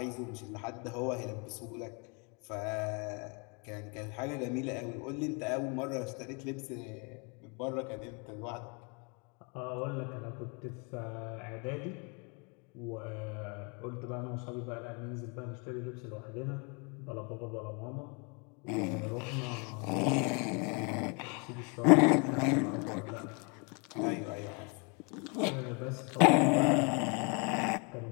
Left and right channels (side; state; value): right; quieter; 33.7 dB